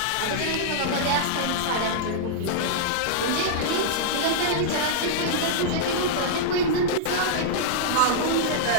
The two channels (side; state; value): both; different; correlation -0.02